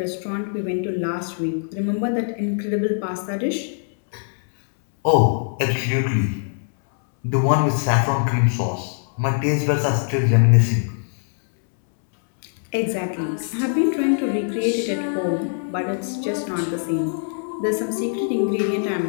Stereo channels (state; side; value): silent; right; 63 dB below the other